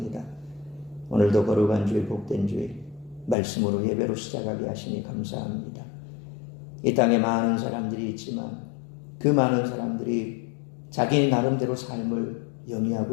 오늘도 거룩한 주일, 복된 주일, 말씀으로 예배로 시작하게 하시니 감사합니다. 이 땅에 많은 사람들이 있지만 그 많은 사람들이 자기 나름대로 삶을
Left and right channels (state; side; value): drops out; right; at 3.4 s